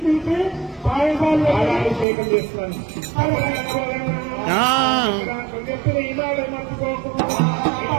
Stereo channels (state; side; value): drops out; left; at 2.1 s